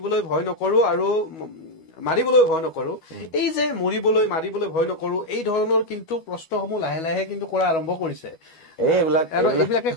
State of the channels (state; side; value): late; right; 12 ms